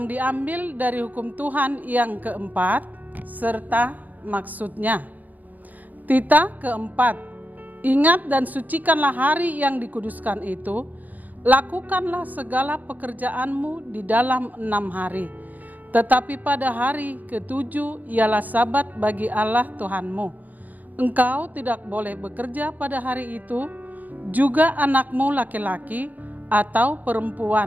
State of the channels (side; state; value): left; late; 0.081 ms